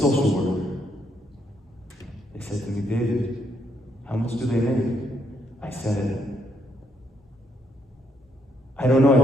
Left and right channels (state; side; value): normal; both; correlation 0.75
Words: worker. They said to me, David, how much do they make? I said, I don't know, I